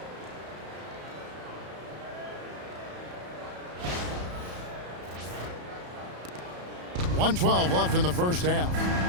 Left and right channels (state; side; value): late; left; 34 ms